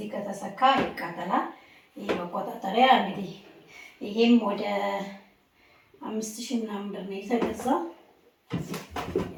ከተሰካ ይቃጠላል። ይሄ መቆጣጠሪያ እንግዲህ ይሄም ወደ 5000 ምናምን ብር ነው የተገዛው።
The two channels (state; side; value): identical; both; correlation 1.00